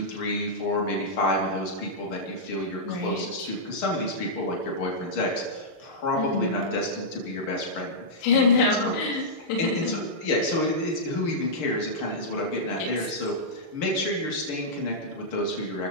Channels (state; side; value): late; right; 6.6 ms